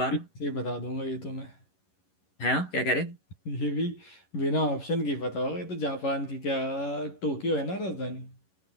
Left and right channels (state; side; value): late; right; 11 ms